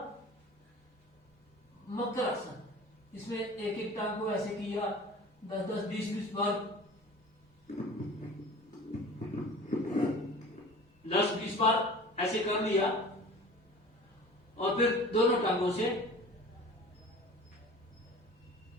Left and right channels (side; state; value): both; normal; correlation 0.41